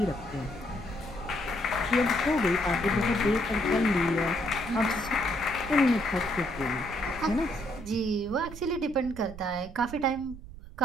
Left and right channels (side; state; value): right; noise; rumble, 14 dB below the sound